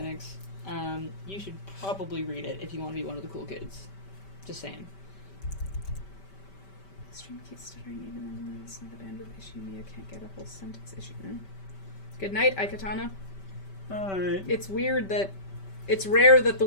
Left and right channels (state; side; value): late; right; 5.2 ms